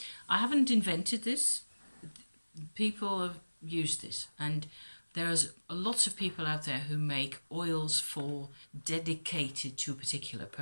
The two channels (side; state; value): both; inverted; correlation -1.00